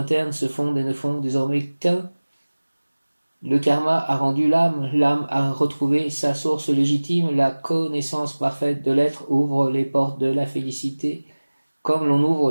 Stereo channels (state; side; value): inverted; both; correlation -1.00